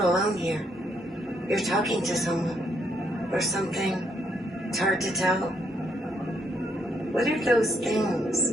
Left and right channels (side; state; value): both; normal; correlation 0.74